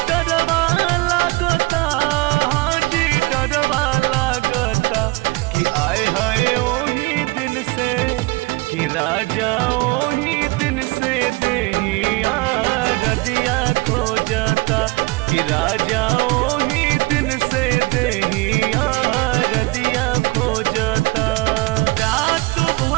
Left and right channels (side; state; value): left; quieter; 24.4 dB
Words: डरवा लागता हाजी डरवा लागता कि आए हाय ओही दिन से कि राजा ओही दिन से देहिया रदिया खोजता कि राजा ओही दिन से देहिया रदिया खोजता रात